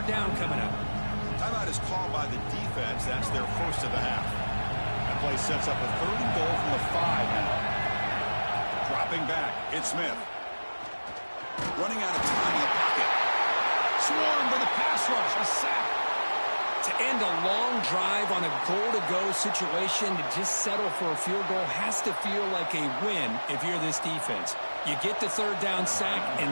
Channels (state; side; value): inverted; both; correlation -1.00